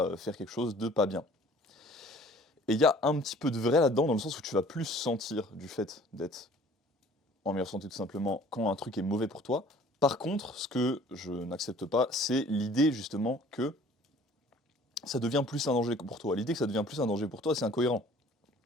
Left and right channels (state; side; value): normal; both; correlation 0.52